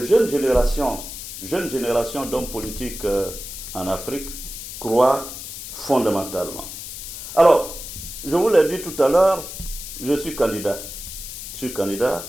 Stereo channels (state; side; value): noise; left; hiss, 10 dB below the sound